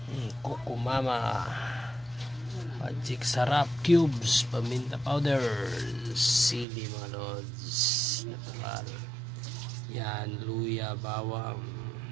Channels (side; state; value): left; drops out; at 6.7 s